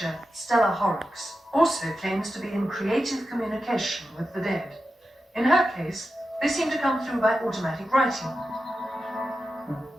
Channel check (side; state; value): both; normal; correlation 0.91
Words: Stella Horrocks also claims to be in creative communication with the dead. In her case, they seem to come through by automatic writing.